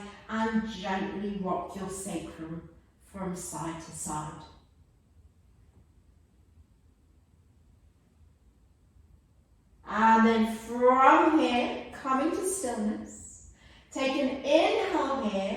and gently rock your sacrum from side to side. And then from here, coming to stillness, take an inhale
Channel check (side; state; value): both; identical; correlation 1.00